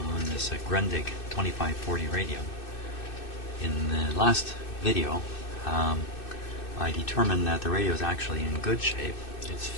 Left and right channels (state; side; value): late; right; 2.6 ms